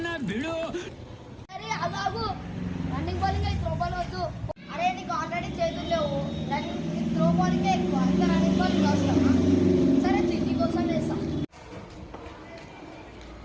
అరే అదాగు రన్నింగ్ బౌలింగ్ త్రో బాల్ వద్దు. అరే నీకు ఆల్రెడీ చేతులు లేవు, రన్నింగ్ త్రో బాలింగ్ ఎక్కువ, ఇంకా రన్నింగ్ బాలింగ్ అవసరమా? సరే తిరిగి కోసం వేస్తాం.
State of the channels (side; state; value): both; identical; correlation 1.00